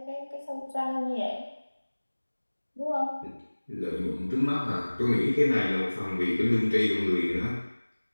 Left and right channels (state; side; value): inverted; both; correlation -1.00